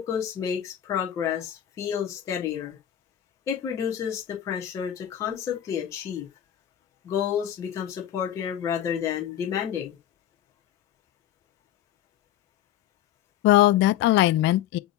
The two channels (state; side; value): quieter; right; 11.4 dB